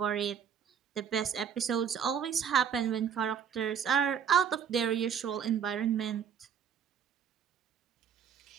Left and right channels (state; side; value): quieter; left; 7.8 dB